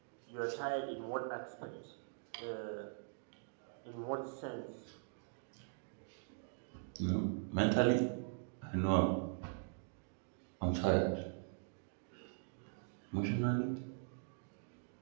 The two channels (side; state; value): left; silent; digital silence